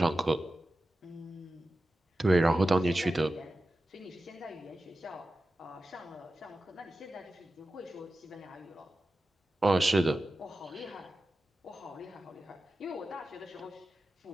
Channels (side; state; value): both; normal; correlation 0.93